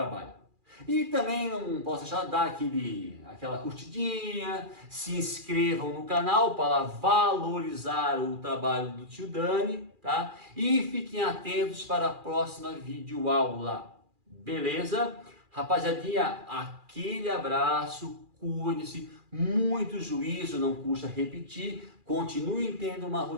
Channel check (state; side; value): late; left; 2.4 ms